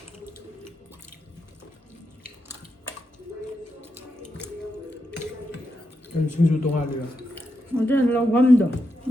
सिंजू तोंगालिया ꯑꯗꯨ ꯂꯧꯐꯝꯗꯣ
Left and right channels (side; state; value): both; normal; correlation 0.85